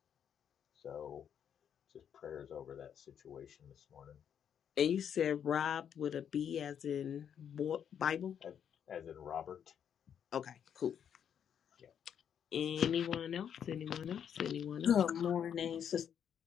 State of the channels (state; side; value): quieter; right; 8.5 dB